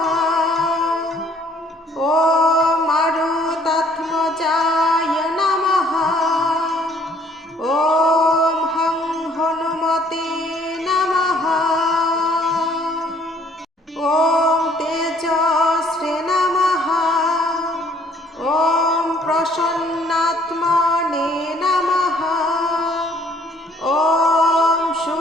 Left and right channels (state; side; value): normal; both; correlation 0.60